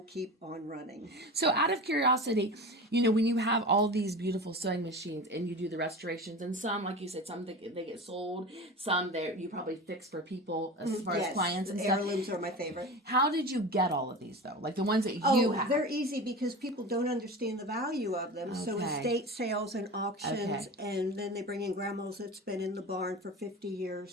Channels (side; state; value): both; normal; correlation 0.31